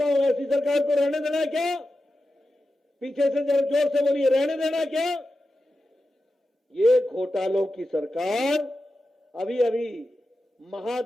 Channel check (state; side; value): normal; both; correlation 0.91